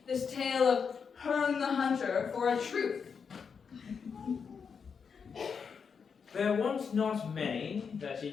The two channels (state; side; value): quieter; right; 6.2 dB